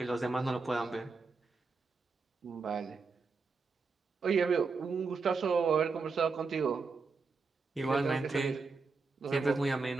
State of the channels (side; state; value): left; quieter; 4.4 dB